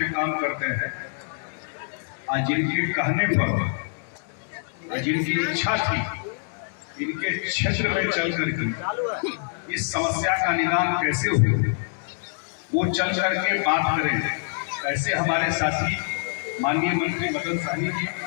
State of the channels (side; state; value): right; silent; digital silence